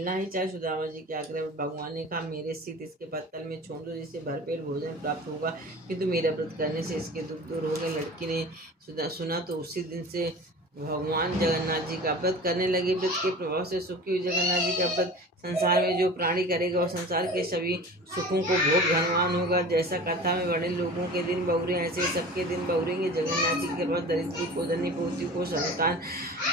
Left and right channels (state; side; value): normal; both; correlation 0.38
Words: ही चाहे। सुदामा जी के आग्रह पर भगवान ने कहा, मेरे स्थित इसके पत्तल में छोड़ दो जिससे भरपेट भोजन प्राप्त होगा, किंतु मेरा व्रत करने से इसके दुख दूर हो गए। लड़की ने सुना तो उसी दिन से भगवान जगन्नाथ जी का व्रत करने लगे। व्रत के प्रभाव से सुखी हुई जगन्नाथ जी का व्रत संसार में जो प्राणी करेगा और संसार के सभी सुखों को भोग धनवान होगा। जैसा कथा में बड़े लोगों के दिन बहुरे ऐसे सबके दिन बहुरेंगे। जगन्नाथ जी के पास दरिद्री को धनी पोती को संतान